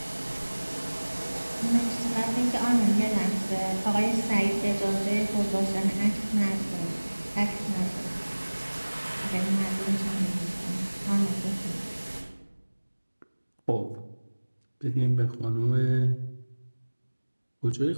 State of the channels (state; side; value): inverted; both; correlation -1.00